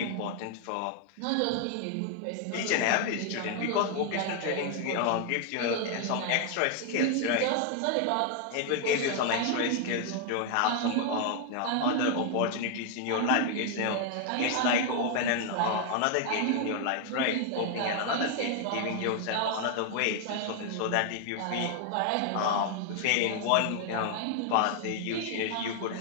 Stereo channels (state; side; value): different; both; correlation 0.00